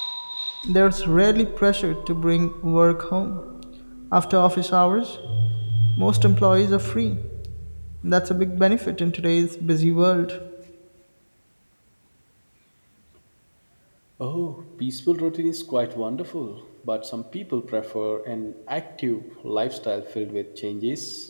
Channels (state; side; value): inverted; both; correlation -1.00